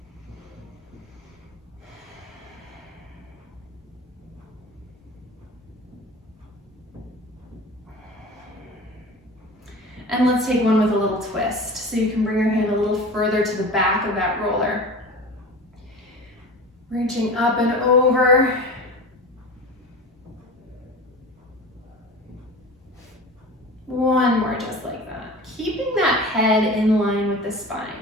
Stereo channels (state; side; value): normal; both; correlation 0.35